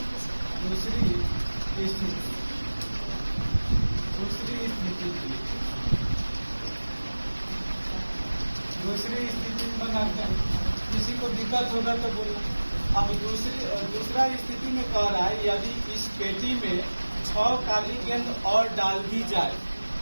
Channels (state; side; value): inverted; both; correlation -1.00